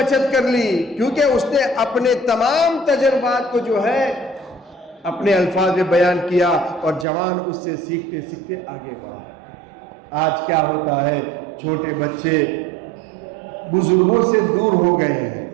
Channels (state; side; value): drops out; left; at 7.1 s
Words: کر لی کیونکہ اس نے اپنے تمام تجربات کو جو ہے اپنے الفاظ میں بیان کیا اور جوان اس سے سیکھتے سیکھتے آگے بڑھا. آج کیا ہوتا ہے؟ چھوٹے بچے بزرگوں سے دور ہو گئے ہیں.